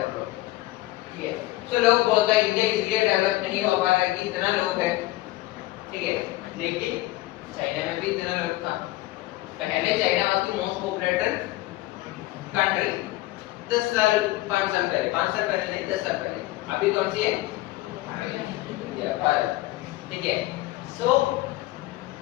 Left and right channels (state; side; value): quieter; right; 18.0 dB